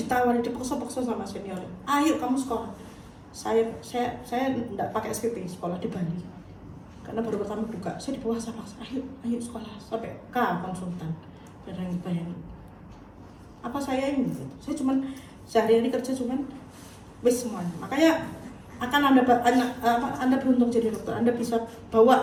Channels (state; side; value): identical; both; correlation 1.00